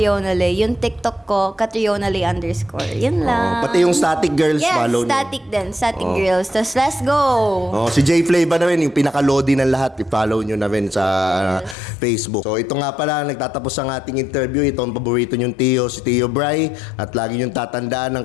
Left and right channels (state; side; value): drops out; right; at 11.8 s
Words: Lay. Yung TikTok ko, Catriona Lay _ Yun lang. Pati yung Static Girls, Yes, follow nyo. Static din. Static Girls. Tapos let's go. Si J Flava na rin, yung pinaka-lodi ng lahat, i-follow nyo na rin sa Facebook. So ito nga pala, nagtatapos ang ating interview. Ito ang paborito nyong Tio, si Tio Bry. At lagi nyong tatandaan ng